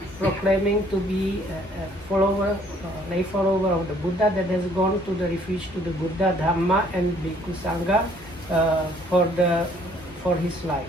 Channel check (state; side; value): normal; both; correlation 0.61